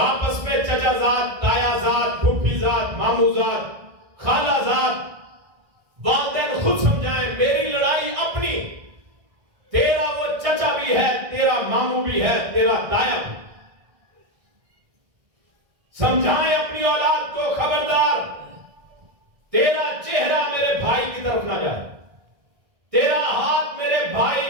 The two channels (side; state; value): left; late; 1.6 ms